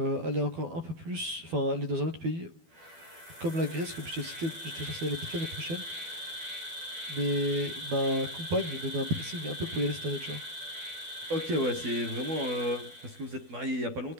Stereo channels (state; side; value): late; left; 12 ms